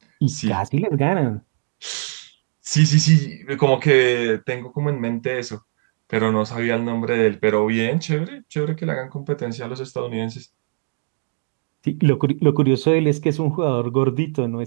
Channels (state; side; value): silent; left; digital silence